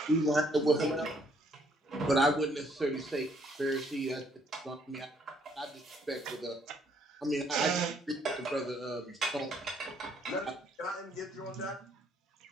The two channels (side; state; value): both; normal; correlation 0.67